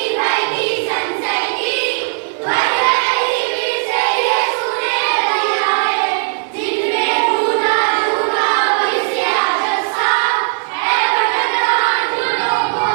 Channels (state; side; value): silent; left; 65 dB below the other